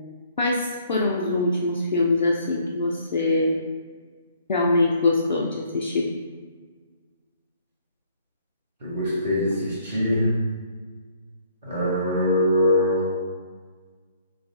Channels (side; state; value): both; inverted; correlation -0.64